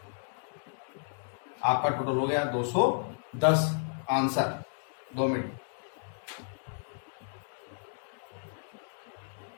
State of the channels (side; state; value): right; silent; digital silence